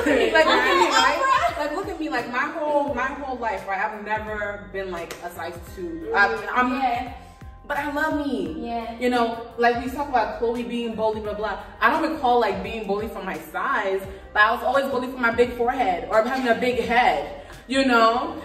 at me, like, look at me, right? Like, look at me, like, my whole life, right? I've never been like a size 2. But I love me. Yeah. You know, like we talk about Khloe being bullied, blah blah. I don't recall like being bullied for my size, but I was always bullied for my big forehead or having a big head. You know,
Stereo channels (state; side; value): identical; both; correlation 1.00